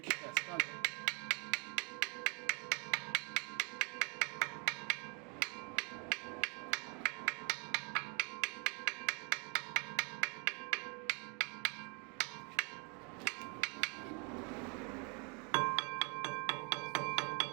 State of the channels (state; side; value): quieter; left; 34.6 dB